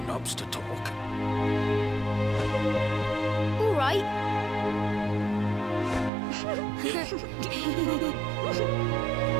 to talk? All right. Well.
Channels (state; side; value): drops out; left; at 6.1 s